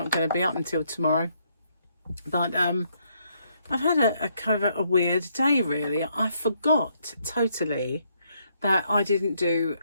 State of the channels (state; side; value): inverted; both; correlation -0.73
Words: going to be up until tomorrow, but I've had a kind of a weird day really. I forgot totally that I didn't do